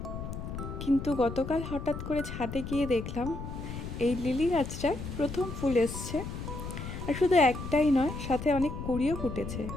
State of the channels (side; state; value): left; noise; rumble, 7 dB below the sound